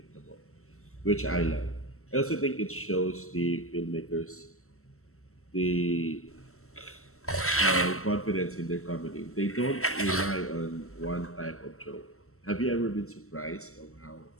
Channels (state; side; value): late; right; 0.63 ms